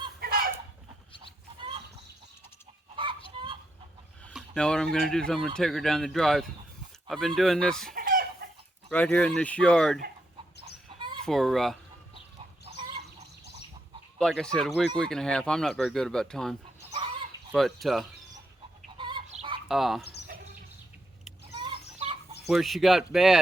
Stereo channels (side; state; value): both; normal; correlation 0.81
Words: Now what I'm going to do is I'm going to take her down the drive. I've been doing this right here in this yard for, like I said, a week and a half. I'm not very good about time. But where she got